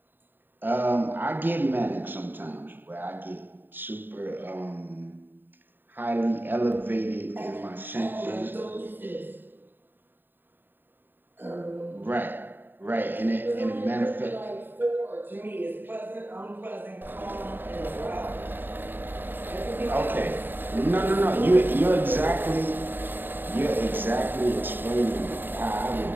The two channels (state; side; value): late; left; 0.094 ms